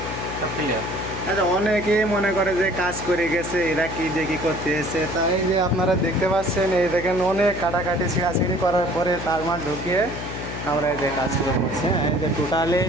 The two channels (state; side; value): noise; left; hum, 8 dB below the sound